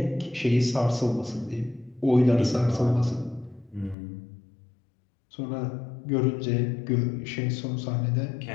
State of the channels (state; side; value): drops out; right; at 4.0 s